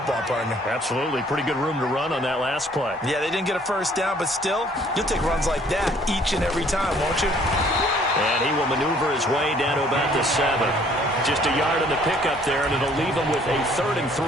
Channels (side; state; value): both; normal; correlation 0.59